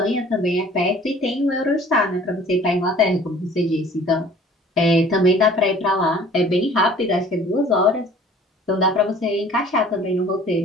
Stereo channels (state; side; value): normal; both; correlation 0.50